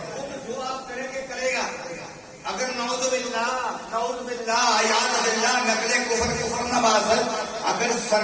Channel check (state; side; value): identical; both; correlation 1.00